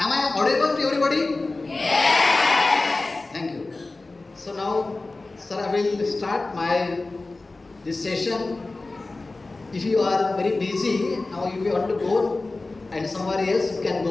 I audible to everybody? Yes. Thank you. So now, sir, I will start this session. If you are very busy, now if you want to go and somewhere else, you can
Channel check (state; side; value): quieter; right; 3.3 dB